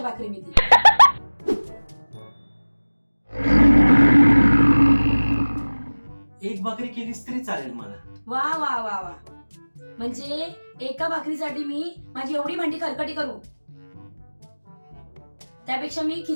भाकरी मी ती. एक भाकरी केलीस तरी चालेल मला. वा वा वा वा, म्हणजे एका भाकरीसाठी मी माझी एवढी भांडी खरकटी करू? त्यापेक्षा मी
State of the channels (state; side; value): inverted; both; correlation -1.00